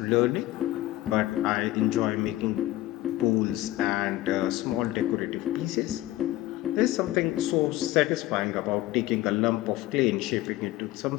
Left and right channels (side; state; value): right; quieter; 16.5 dB